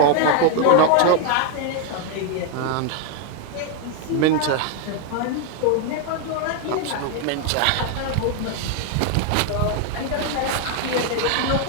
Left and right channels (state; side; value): different; both; correlation 0.00